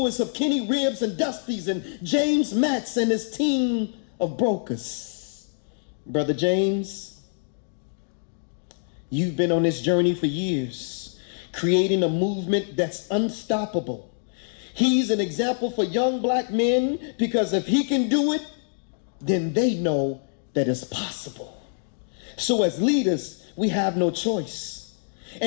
of Kenny Ribs and Dusty's, and James Matteson and his team of brokers. Brother James, you've been on this journey for years, creating a movement that's unstoppable. He's an example for young black men, because if he can do it, then they know that it's possible. So as leaders, we have no choice,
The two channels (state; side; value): silent; right; digital silence